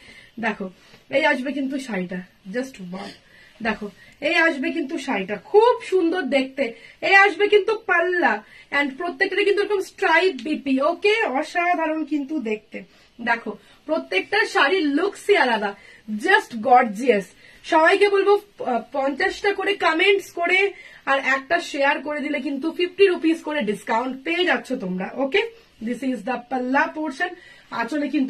দেখো এই আসবে কিন্তু শাড়িটা, জাস্ট ওয়াও। দেখো এই আসবে কিন্তু শাড়িটা খুব সুন্দর দেখতে। এই আসবে কিন্তু পাল্লা, এন্ড প্রত্যেকটা কিন্তু এরকম স্ট্রাইপ বিপি। ওকে, অসাধারণ কিন্তু দেখতে। দেখো প্রত্যেকটা শাড়ির লুকসই আলাদা, জাস্ট গর্জিয়াস। সবাইকে বলবো 50টা করে কমেন্টস করে আর একটা শেয়ার করে দিলে কিন্তু 50 রুপিস করে ডিসকাউন্ট পেয়ে যাচ্ছ তোমরা। ওকে, this is the palla portion. আঁচলে কিন্তু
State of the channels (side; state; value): both; identical; correlation 1.00